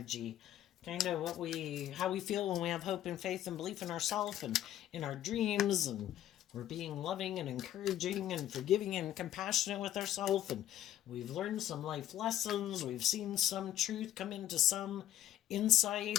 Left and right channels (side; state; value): right; quieter; 12.3 dB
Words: Kind of how we feel when we have hope and faith and belief in ourselves and in our dreams, and we're being loving and encouraging and forgiving and compassionate with ourselves, and we've learned some life lessons, we've seen some truth come into some insight